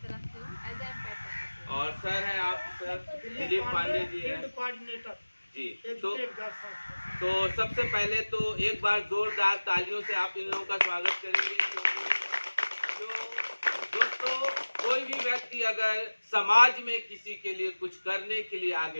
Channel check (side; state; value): both; inverted; correlation -1.00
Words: से हूँ एज ए एम्पायर प्रोफेसर। और सर हैं आप सर दिलीप पांडे जी हैं जी। तो सबसे पहले तो एक बार जोरदार तालियों से आप इन लोगों का स्वागत करेंगे, क्योंकि दोस्तों कोई भी व्यक्ति अगर समाज में किसी के लिए कुछ करने के लिए